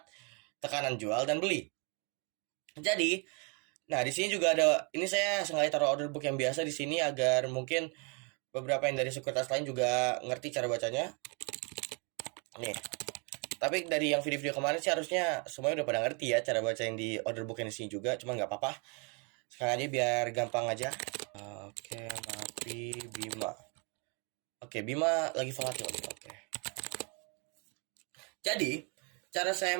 tekanan jual dan beli. Jadi, nah di sini juga ada ini saya sengaja taruh order book yang biasa di sini agar mungkin beberapa yang dari sekuritas lain juga ngerti cara bacanya. Nih, tapi dari yang video-video kemarin sih harusnya semuanya udah pada ngerti ya cara baca yang di order book yang di sini juga, cuma nggak apa-apa. Sekarang aja biar gampang aja. Oke, Mapi Bima. Oke, Bima lagi volatil. Oke. Jadi, cara saya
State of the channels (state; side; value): quieter; left; 35.1 dB